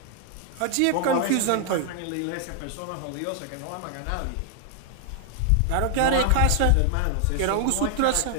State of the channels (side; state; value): both; different; correlation 0.00